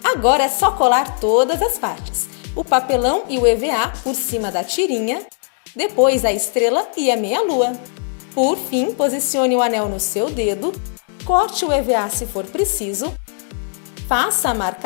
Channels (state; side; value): silent; right; 57 dB below the other